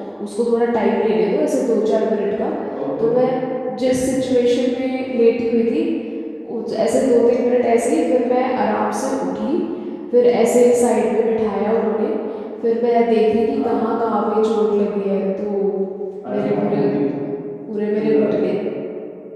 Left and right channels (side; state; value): both; identical; correlation 1.00